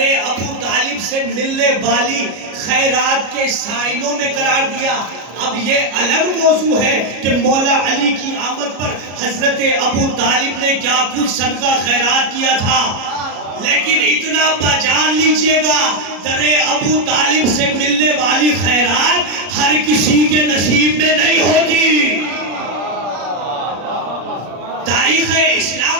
ابو طالب سے ملنے والی خیرات کے سائنوں میں قرار دیا۔ اب یہ الگ موضوع ہے کہ مولا علی کی آمد پر حضرت ابو طالب نے کیا کچھ صدقہ خیرات کیا تھا، لیکن اتنا پہچان لیجئے گا در ابو طالب سے ملنے والی خیرات ہر کسی کے نصیب میں نہیں ہوتی۔ تاریخ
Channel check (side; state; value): left; late; 33 ms